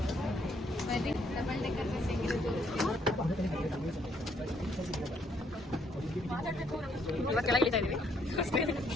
ಡಬಲ್ ಡೆಕರ್ ಬಸ್ ಹೆಂಗಿದೆ ತೋರಿಸ್ತೀವಿ. ಇವಾಗ ಕೆಳಗೆ ಇಳಿತಾ ಇದೀವಿ.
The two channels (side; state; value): both; normal; correlation 0.69